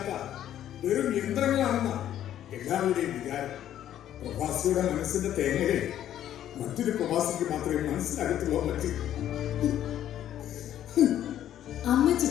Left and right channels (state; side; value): quieter; right; 11.4 dB